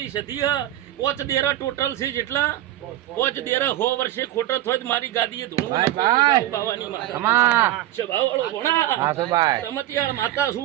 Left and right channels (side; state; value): left; quieter; 13.8 dB